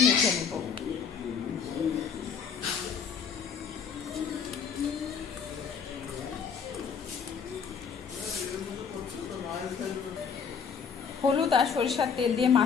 মেখে নেব। হলুদ আর সরিষার তেল দিয়ে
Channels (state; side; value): quieter; right; 6.5 dB